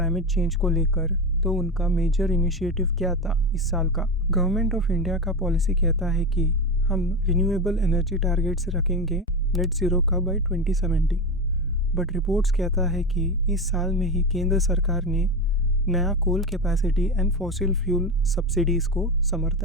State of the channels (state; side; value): normal; both; correlation 0.19